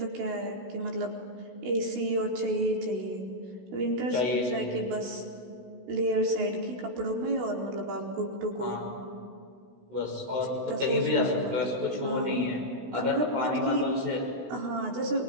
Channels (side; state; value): left; late; 16 ms